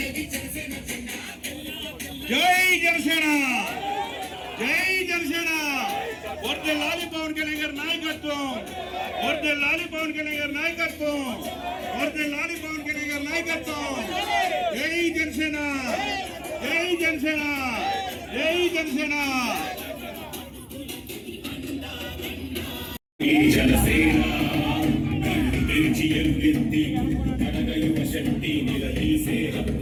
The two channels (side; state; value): both; identical; correlation 1.00